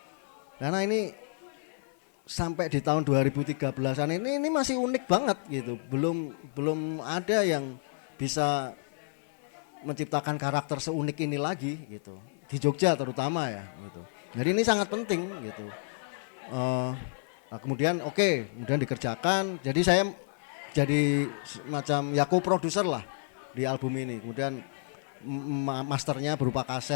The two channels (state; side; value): silent; right; 58 dB below the other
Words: Karena ini sampai di tahun 2013-an ini masih unik banget gitu. Belum ada yang bisa menciptakan karakter seunik ini lagi gitu. Di Jogja terutama ya gitu. Jadi ini sangat penting gitu. Nah kemudian kemudian dikerjakan. Jadi saya jadi semacam ya co-producer lah di album ini. Kemudian masternya berupa